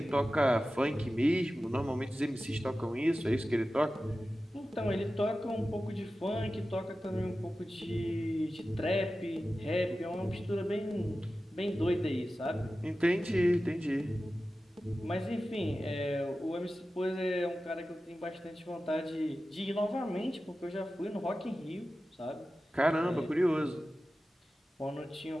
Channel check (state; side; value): normal; both; correlation 0.94